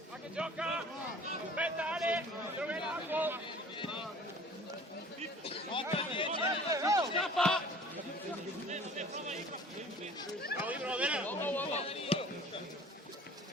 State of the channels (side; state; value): both; normal; correlation 0.47